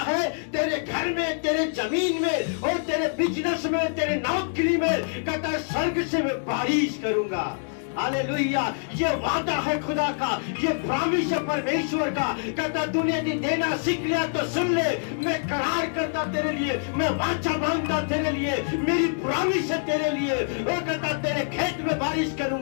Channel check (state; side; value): silent; right; digital silence